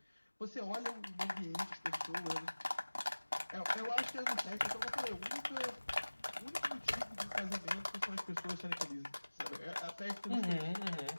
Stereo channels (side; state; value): both; inverted; correlation -1.00